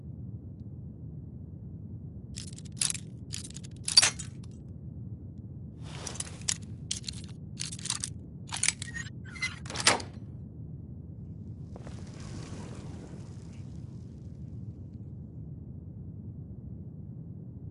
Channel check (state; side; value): identical; both; correlation 1.00